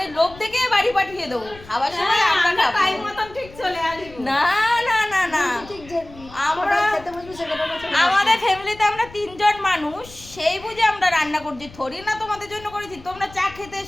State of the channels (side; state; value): left; noise; rumble, 20 dB below the sound